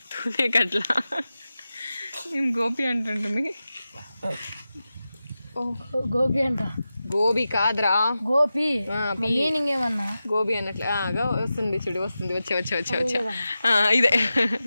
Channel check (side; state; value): both; inverted; correlation -0.93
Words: తునేకట్ల మేము గోపి అంటుంటుంది. గోపి అంట, గోబీ కాదురా గోపి. మీనింగ్ ఏమన్నా గోబీ అన్నట్లు వస్తుంది చూడు, వస్తుంది. వచ్చా ఇదే